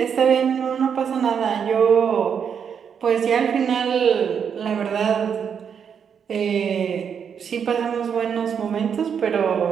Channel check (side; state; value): left; quieter; 7.3 dB